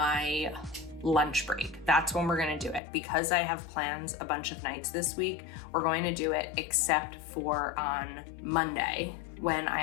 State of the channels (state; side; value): drops out; right; at 2.8 s